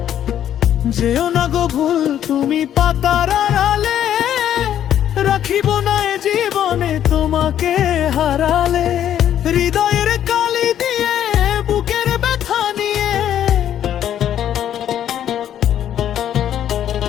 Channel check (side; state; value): right; quieter; 10.5 dB